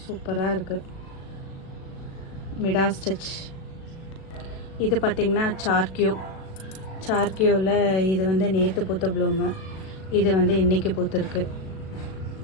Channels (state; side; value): late; right; 37 ms